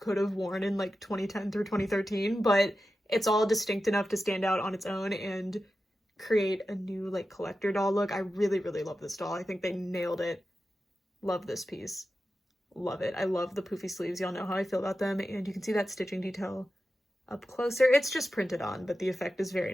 have worn in like 2010 through 2013, but it's all distinct enough to stand out on its own and create a new like collector doll look. I really, really love this doll. I think they nailed it. Love this piece. Love it. I love the poofy sleeves. Y'all know how I feel about them. And you can see that stitching detail up closer. It's just printed on, but the effect is very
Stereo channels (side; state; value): both; normal; correlation 0.92